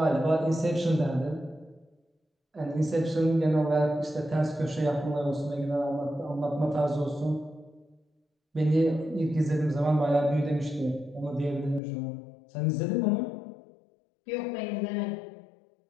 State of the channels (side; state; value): right; drops out; at 11.8 s